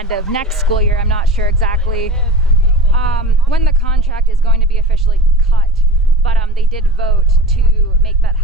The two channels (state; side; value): normal; both; correlation 0.34